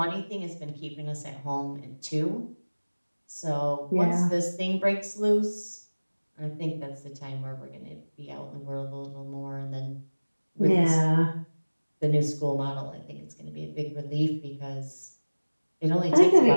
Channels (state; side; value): inverted; both; correlation -1.00